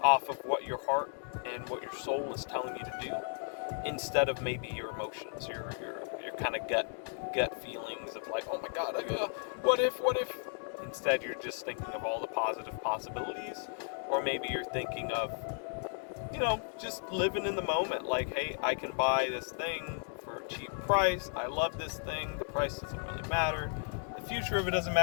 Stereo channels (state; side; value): silent; right; 55 dB below the other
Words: off of what your heart and what your soul is telling you to do, instead of maybe your emotions, your kind of gut feelings of like, oh my god, what if? Instead, you're just thinking of all the positive possibilities, or maybe you're thinking of, just living in the moment. Like, hey, I can buy this thing for a cheap price. I love this thing. The price doesn't really matter. The future of it doesn't